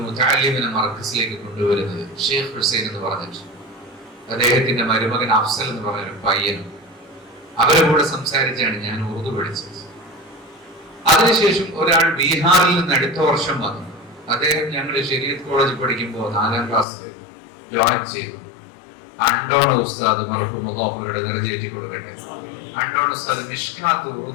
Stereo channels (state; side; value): drops out; right; at 16.9 s